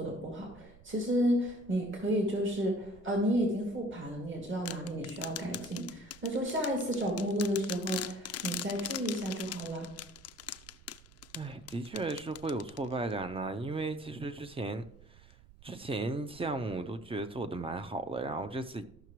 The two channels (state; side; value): noise; right; rumble, 22 dB below the sound